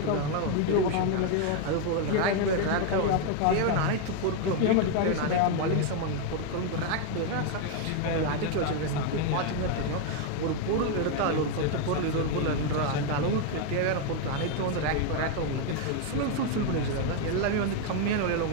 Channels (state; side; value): different; both; correlation 0.01